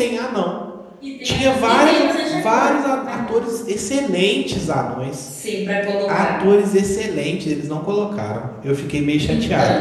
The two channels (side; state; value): both; identical; correlation 1.00